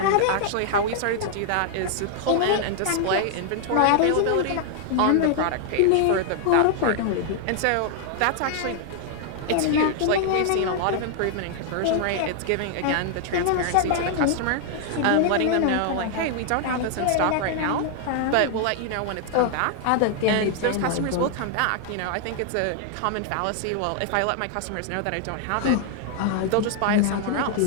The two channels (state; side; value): different; both; correlation 0.00